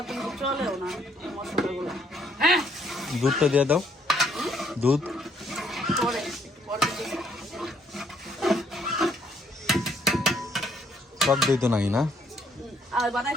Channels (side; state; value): both; normal; correlation 0.68